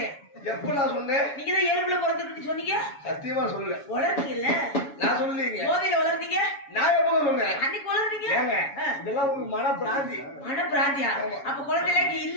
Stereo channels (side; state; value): right; late; 7.1 ms